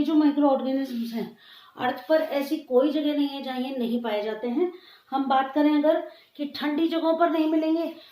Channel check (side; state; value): both; identical; correlation 1.00